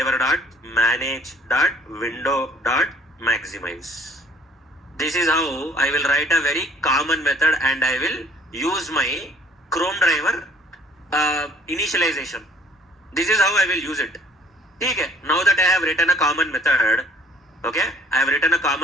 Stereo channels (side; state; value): both; normal; correlation 0.57